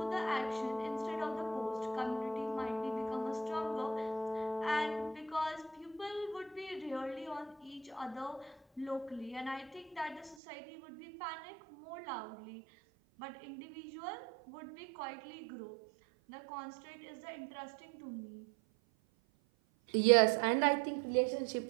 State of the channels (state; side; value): drops out; left; at 10.4 s